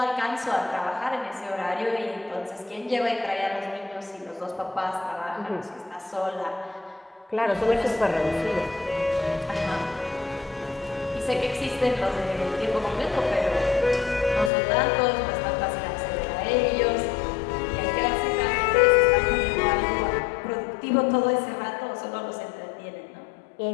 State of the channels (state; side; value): drops out; right; at 14.5 s